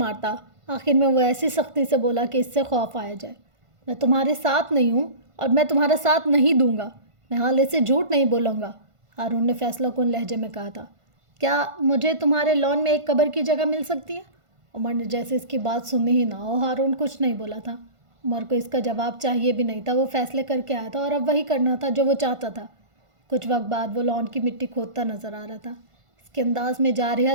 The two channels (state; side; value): late; left; 1.5 ms